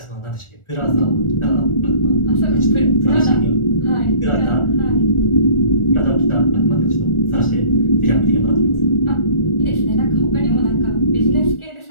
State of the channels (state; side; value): late; right; 1.4 ms